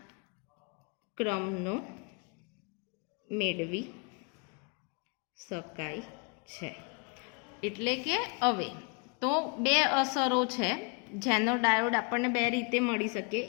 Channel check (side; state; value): right; quieter; 34.0 dB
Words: ક્રમનો મેળવી શકાય છે. એટલે કે હવે તો બે અસરો છે. જેનર ડાયોડ આપણને બે રીતે મળી શકે,